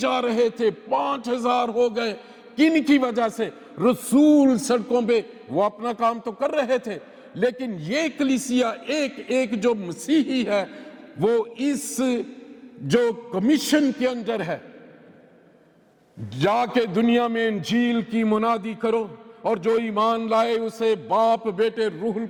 रहे थे, 5000 हो गए। किन की वजह से? रसूल सड़कों पे वो अपना काम तो कर रहे थे, लेकिन ये कलीसिया एक एक जो मसीही है, वो इस जो कमीशन के अंदर है, जाके दुनिया में इंजील की मुनादी करो, और जो ईमान लाए उसे बाप बेटे रूहुल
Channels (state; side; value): identical; both; correlation 1.00